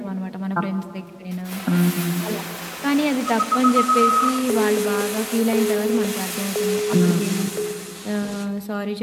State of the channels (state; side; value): identical; both; correlation 1.00